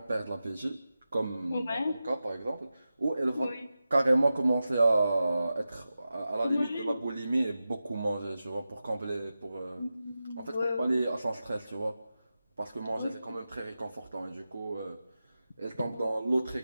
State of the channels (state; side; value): inverted; both; correlation -0.93